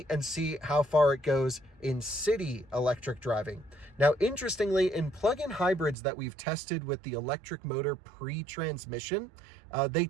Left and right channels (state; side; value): drops out; left; at 6.0 s